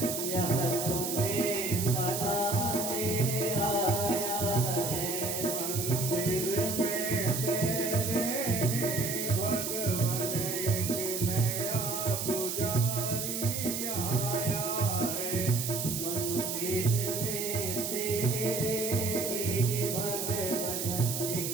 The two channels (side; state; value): right; noise; hiss, 3 dB below the sound